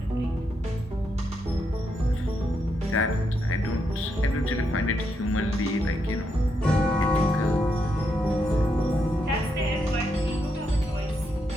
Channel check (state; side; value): normal; both; correlation 0.80